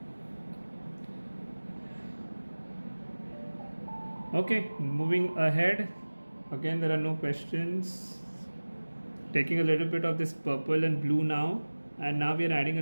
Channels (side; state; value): both; inverted; correlation -1.00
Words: Okay, moving ahead. Again, there are no questions. Taking a little bit of this purple and blue now, and now we are adding a